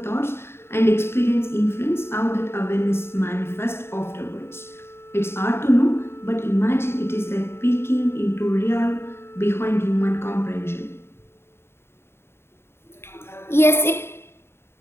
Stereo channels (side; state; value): right; late; 0.12 ms